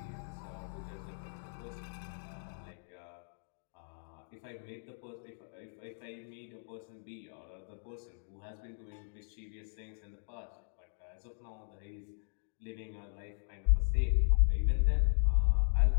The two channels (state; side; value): silent; right; digital silence